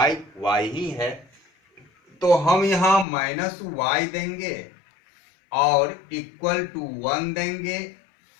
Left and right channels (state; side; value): drops out; right; at 3.1 s